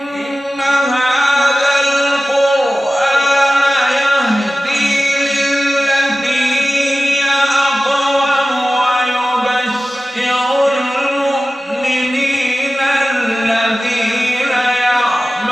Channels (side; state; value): both; normal; correlation 0.96